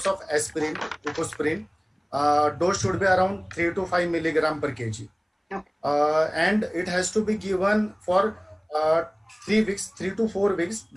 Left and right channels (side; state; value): both; identical; correlation 1.00